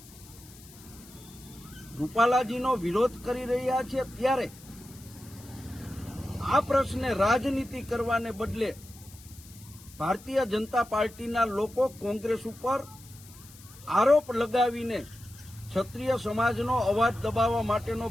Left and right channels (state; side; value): noise; left; hiss, 21 dB below the sound